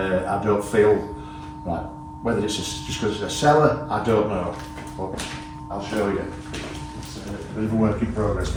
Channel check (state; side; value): identical; both; correlation 1.00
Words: don't feel like, whether it's just because it's a cellar, I don't know, but I'll show you. It's a bit of a work in progress